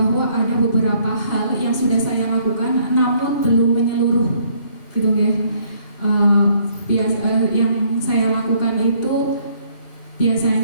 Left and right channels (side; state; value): right; late; 2.9 ms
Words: ada beberapa hal yang sudah saya lakukan namun belum menyeluruh, gitu ya. Yang saya lakukan itu